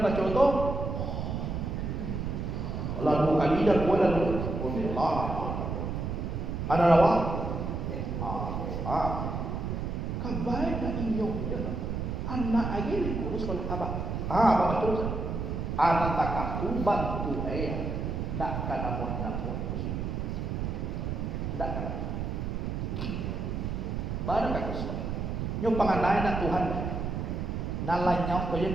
baca tu. Lalu kali dah buat lalu. Allah. Ada lawa. Kabai nak inyong dia. Anak lagi ni kurus kalau abah. Abah terus. Anak takah tu bantu ayah. Tak kena buat kusuk. Tak kena. Baru kata kusuk. Nyo panganai nak Tuhan. Nalanya kau yang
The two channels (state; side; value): noise; right; rumble, 3 dB below the sound